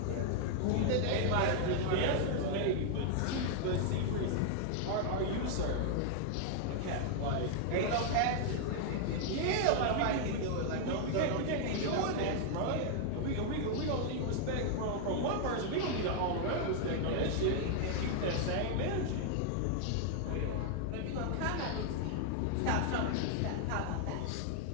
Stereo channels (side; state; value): both; different; correlation 0.00